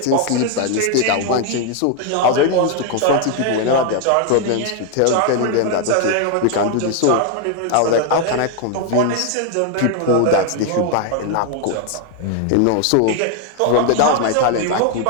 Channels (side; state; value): both; different; correlation 0.01